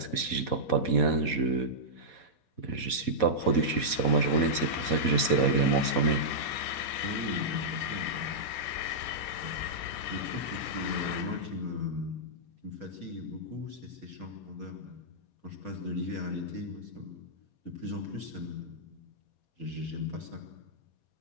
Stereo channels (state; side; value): late; right; 4.2 ms